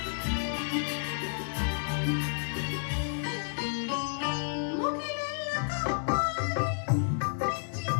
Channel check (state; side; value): silent; right; digital silence